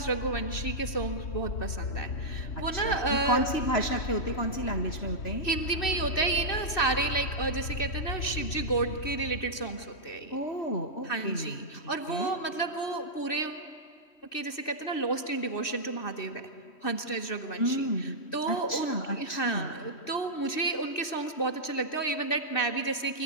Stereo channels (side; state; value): right; late; 3.1 ms